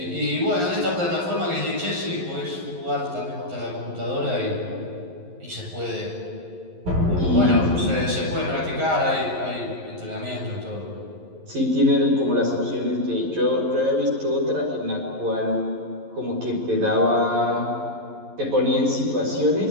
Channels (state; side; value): late; left; 11 ms